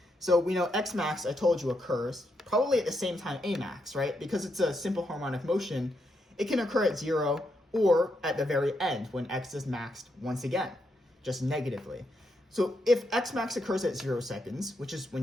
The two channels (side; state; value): both; normal; correlation 0.80